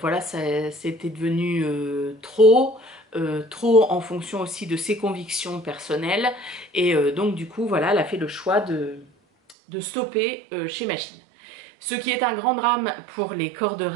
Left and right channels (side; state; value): left; drops out; at 9.6 s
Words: c'était devenu trop en fonction aussi de ses convictions personnelles. Et donc du coup, voilà, elle a fait le choix de stopper chez Machine. Ce qui est un grand drame pour les corps de